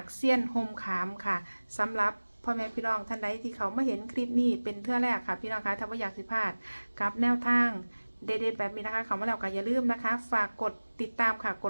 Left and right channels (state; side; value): inverted; both; correlation -1.00